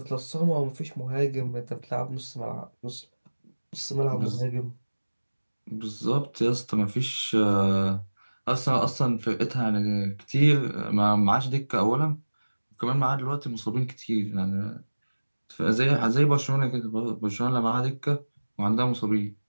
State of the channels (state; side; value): inverted; both; correlation -1.00